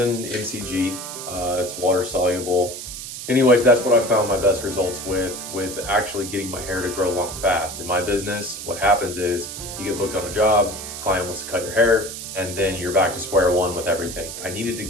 mcg, it's water soluble. Anyways, that's what I found my best results with actually getting my hair to grow long fast. In my business, what happens is you get booked on a job, client wants to cut your hair, and then you're back to square one with everything. I needed to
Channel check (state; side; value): noise; right; hiss, 9 dB below the sound